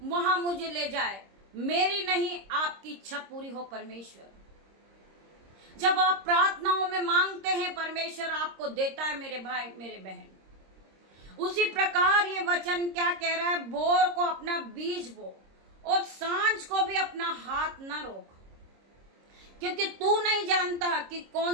वहां मुझे ले जाए, मेरी नहीं आपकी इच्छा पूरी हो परमेश्वर। जब आप प्रार्थनाओं में मांगते हैं परमेश्वर आपको देता है मेरे भाई मेरे बहन। उसी प्रकार ये वचन क्या कह रहा है, भोर को अपना बीज बो और सांझ को भी अपना हाथ न रोक, क्योंकि तू नहीं जानता कि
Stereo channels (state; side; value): late; left; 26 ms